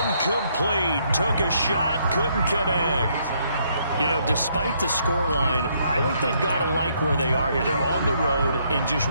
Took a shot, couldn't connect. You know, despite the scoreline, I think they've got to like where they are here. They're on the road and just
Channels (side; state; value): both; inverted; correlation -0.71